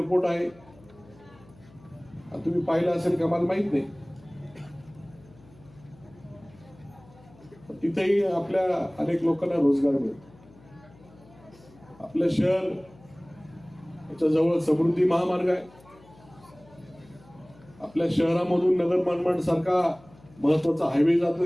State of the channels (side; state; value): left; noise; hum, 25 dB below the sound